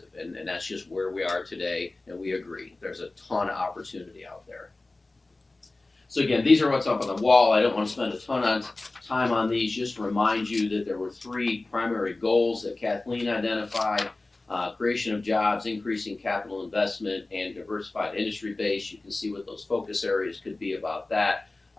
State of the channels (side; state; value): right; quieter; 3.1 dB